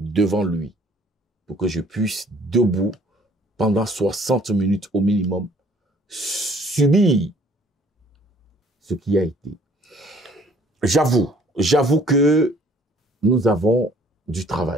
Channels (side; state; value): both; normal; correlation 0.57